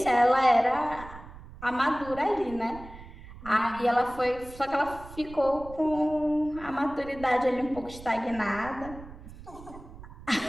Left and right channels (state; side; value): noise; right; rumble, 16 dB below the sound